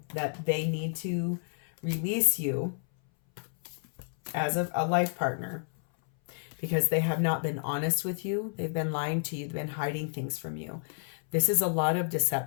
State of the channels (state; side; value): silent; right; 58 dB below the other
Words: that they need to release you as a life partner because they have not been honest with you. They've been lying to you. They've been hiding things from you. This is a lot of